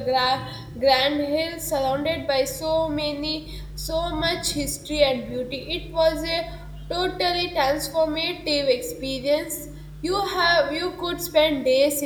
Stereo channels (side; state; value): both; identical; correlation 1.00